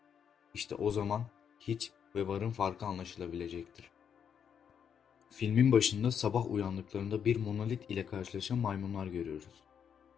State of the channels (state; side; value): quieter; right; 7.9 dB